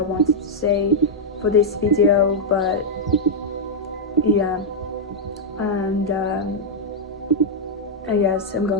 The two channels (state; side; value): normal; both; correlation -0.05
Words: to say for this video. But yeah, and I guess I'm